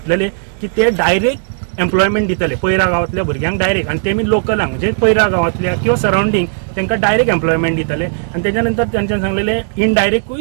की ते डायरेक्ट एम्प्लॉयमेंट दितले पयरा गांवांतल्या भुरग्यांक डायरेक्ट, आनी तेमी लोकलांक म्हणजे पयरा गांवांतल्या किंवा सरावंडींग तांकां डायरेक्ट एम्प्लॉयमेंट दितले. आनी तेच्या नंतर तेंच्यांनी सांगलेले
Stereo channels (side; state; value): left; silent; digital silence